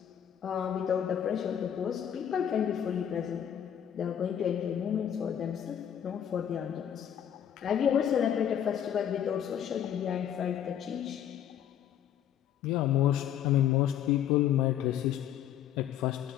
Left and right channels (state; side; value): quieter; right; 9.8 dB